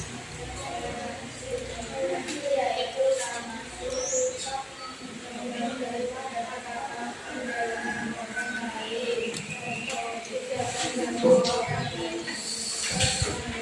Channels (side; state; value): both; identical; correlation 1.00